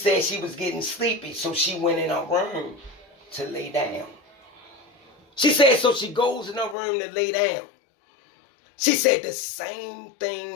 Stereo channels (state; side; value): drops out; right; at 6.8 s